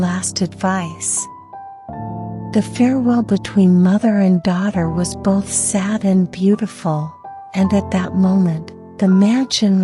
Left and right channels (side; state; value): both; identical; correlation 1.00